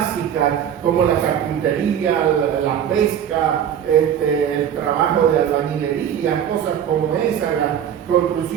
como la carpintería, la pesca, el trabajo de albañilería, cosas como esa, la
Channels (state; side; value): quieter; left; 9.2 dB